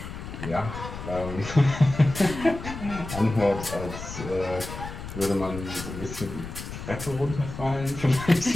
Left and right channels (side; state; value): left; noise; rumble, 10 dB below the sound